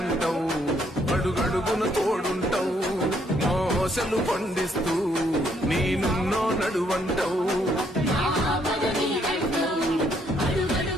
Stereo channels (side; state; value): both; normal; correlation 0.70